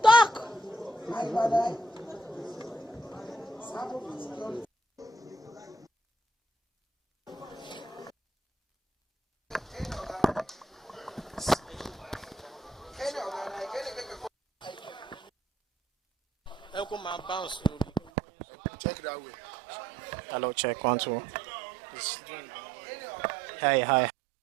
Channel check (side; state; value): left; drops out; at 18.1 s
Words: Talk. Check that way. Hello, check 1 2. Hey, hi.